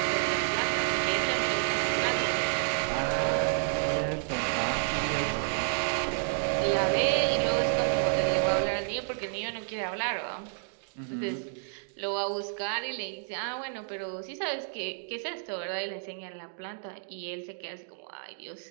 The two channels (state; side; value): silent; left; digital silence